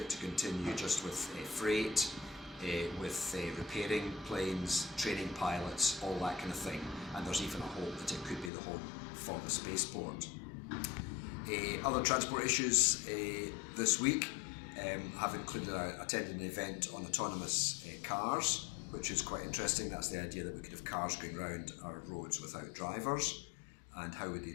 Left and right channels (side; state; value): right; drops out; at 8.5 s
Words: to continue just with freight, with repairing planes, training pilots, all that kind of thing, and there's even a hope that it could be the home for the spaceport. Other transport issues this week have included attending an event on autonomous cars, which is quite interesting. That's the idea that we could have cars going around our roads without drivers, and how would the